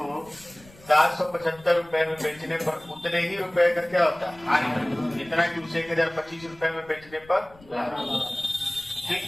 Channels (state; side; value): noise; left; rumble, 24 dB below the sound